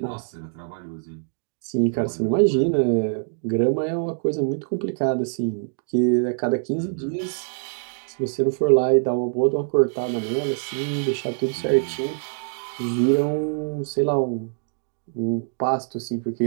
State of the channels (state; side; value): silent; left; digital silence